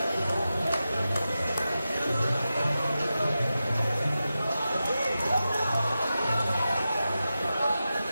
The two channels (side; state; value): both; inverted; correlation -0.92